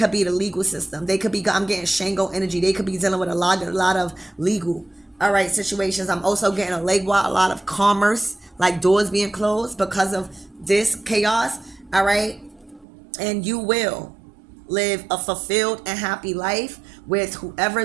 be the legal system. They could be, I'm getting Shango energy. They could be dealing with a lot of legal, all right, situations. I'm also getting a lot of commerce, like doors being closed because of this chaos, all right, and you will live a fulfilled and happy life with whoever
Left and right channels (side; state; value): left; drops out; at 12.9 s